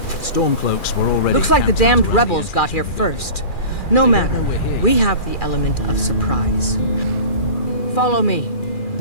Stormcloaks were already... Looks like the camped damned out rebels got here first. No matter, we have the element of surprise. Follow me.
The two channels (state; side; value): late; right; 2.4 ms